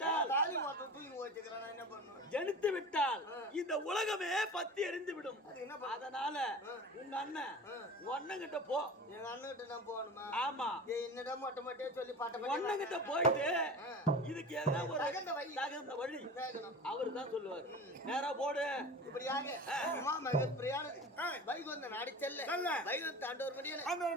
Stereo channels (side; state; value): both; normal; correlation 0.34